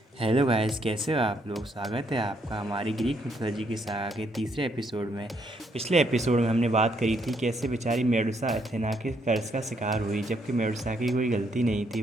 Hello guys, कैसे हो आप लोग। स्वागत है आपका हमारी ग्रीक मिथोलॉजी की सागा के तीसरे एपिसोड में। पिछले एपिसोड में हमने बात करी थी कैसे बेचारी मेडुसा अथेना के कर्ज का शिकार हुई, जबकि मेडुसा की कोई गलती नहीं थी,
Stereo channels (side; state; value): both; normal; correlation 0.73